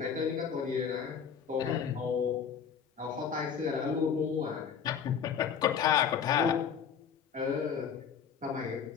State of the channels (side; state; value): right; quieter; 7.3 dB